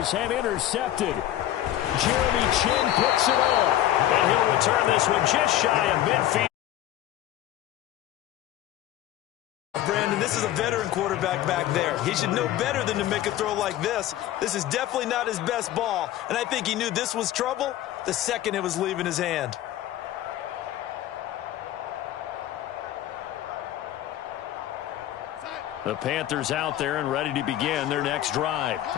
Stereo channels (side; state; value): right; quieter; 13.1 dB